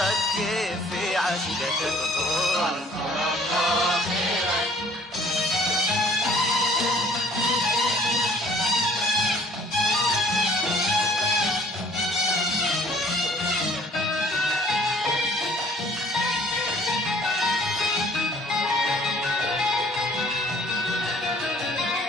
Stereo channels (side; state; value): both; normal; correlation 0.56